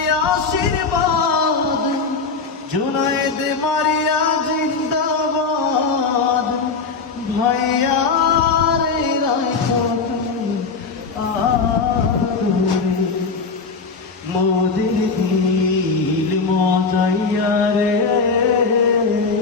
আশীর্বাদ জুনায়েদ মারিয়া জিন্দাবাদ। ভাইয়া রে মোদের দিল মজাইয়া রে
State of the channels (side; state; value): right; quieter; 4.7 dB